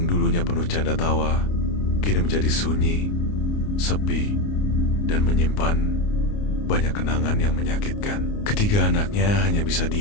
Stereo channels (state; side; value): late; right; 29 ms